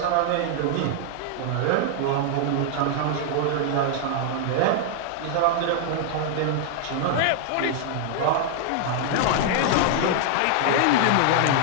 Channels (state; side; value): different; both; correlation 0.00